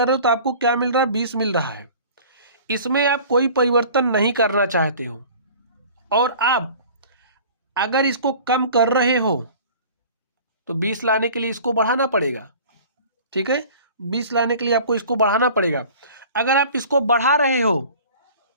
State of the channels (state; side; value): inverted; both; correlation -0.44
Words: रहे हो तो आपको क्या मिल रहा है? 20 मिल रहा है। इसमें आप कोई परिवर्तन नहीं करना चाहते हो और आप अगर इसको कम कर रहे हो तो 20 लाने के लिए इसको बढ़ाना पड़ेगा, ठीक है। 20 लाने के लिए आपको इसको बढ़ाना पड़ेगा। अगर आप इसको बढ़ा रहे हो